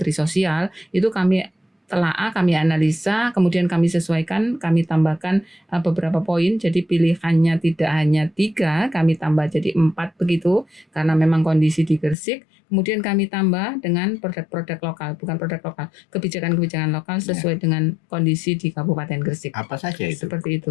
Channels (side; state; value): right; drops out; at 12.2 s